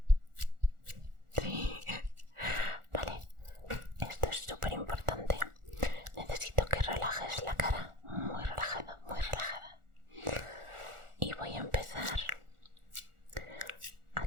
Sí. Vale, esto es súper importante. Necesito que relajes la cara, muy relajada, muy relajada. Y voy a empezar a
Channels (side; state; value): left; late; 1.4 ms